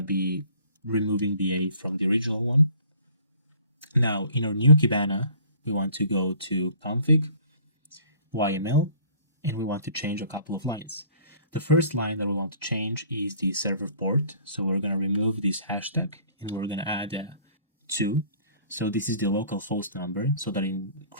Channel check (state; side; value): inverted; both; correlation -0.52